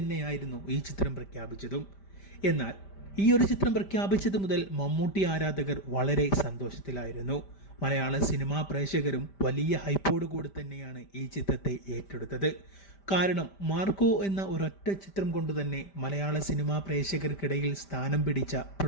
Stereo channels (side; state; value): right; late; 5.1 ms